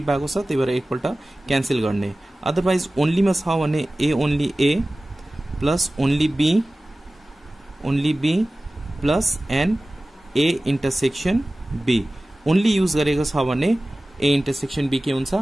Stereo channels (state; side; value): normal; both; correlation 0.97